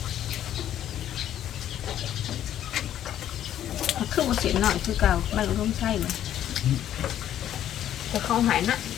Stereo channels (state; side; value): quieter; right; 11.2 dB